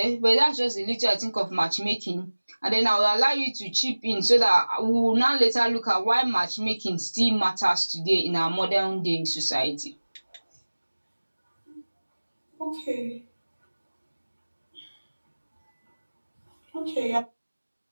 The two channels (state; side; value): inverted; both; correlation -1.00